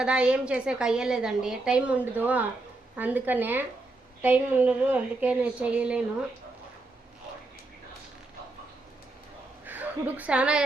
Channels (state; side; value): quieter; left; 3.0 dB